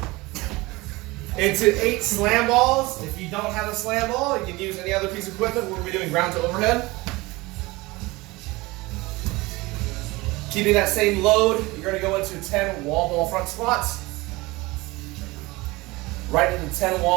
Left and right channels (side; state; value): left; quieter; 21.9 dB